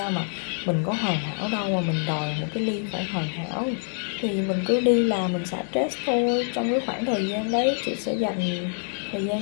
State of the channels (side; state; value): right; silent; 58 dB below the other